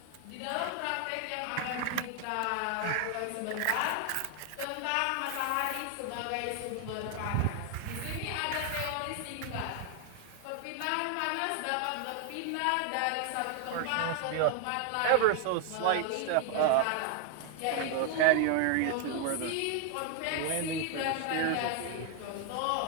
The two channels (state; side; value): different; both; correlation 0.00